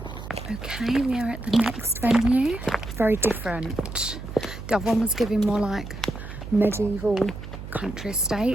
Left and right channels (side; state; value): right; noise; hum, 11 dB below the sound